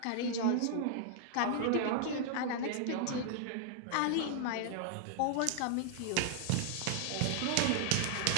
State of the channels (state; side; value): different; both; correlation -0.01